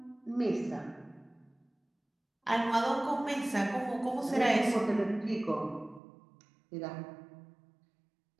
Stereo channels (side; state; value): left; drops out; at 6.0 s